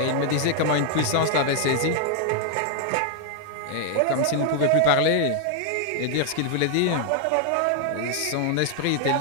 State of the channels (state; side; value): different; both; correlation 0.00